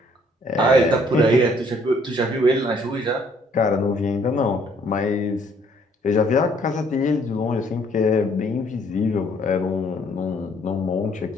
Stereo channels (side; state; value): both; normal; correlation 0.63